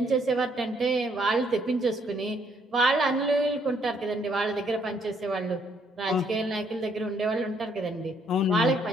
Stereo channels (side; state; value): both; normal; correlation 0.69